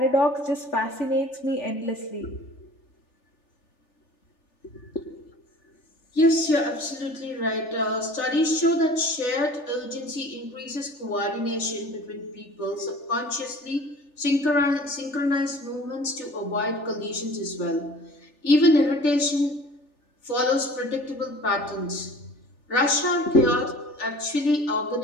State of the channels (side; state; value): right; late; 3.4 ms